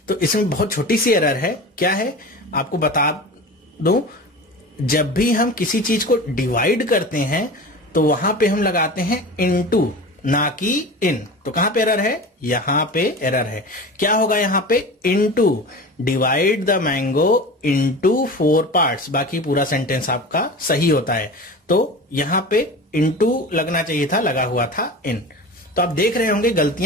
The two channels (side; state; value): both; normal; correlation 0.33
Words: तो इसमें बहुत छोटी सी एरर है। क्या है आपको बता दूं, जब भी हम किसी चीज को डिवाइड करते हैं तो वहां पे हम लगाते हैं इनटू, ना कि इन। तो कहां पे एरर है, यहां पे एरर है। क्या होगा यहां पे, into, divide the mango into 4 parts। बाकी पूरा सेंटेंस आपका सही होता है। तो यहां पे इनटू लगना चाहिए था, लगा हुआ था इन। तो आप देख रहे होंगे